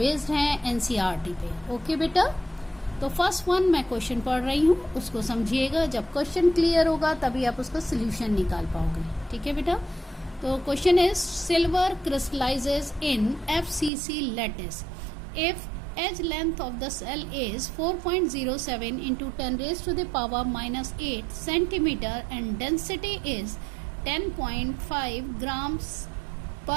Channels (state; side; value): drops out; left; at 13.9 s